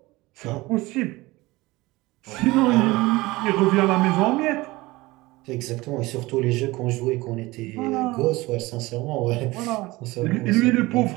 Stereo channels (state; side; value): quieter; left; 20.7 dB